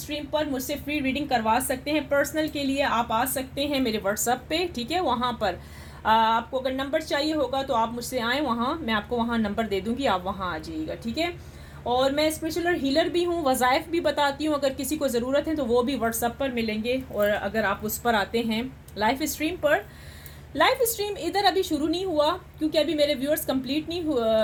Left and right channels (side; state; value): both; identical; correlation 1.00